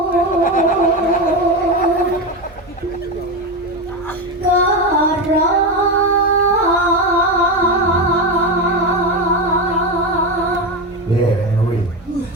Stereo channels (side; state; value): both; normal; correlation 0.16